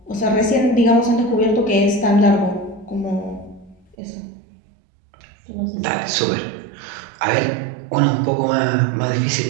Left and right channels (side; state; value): left; drops out; at 4.0 s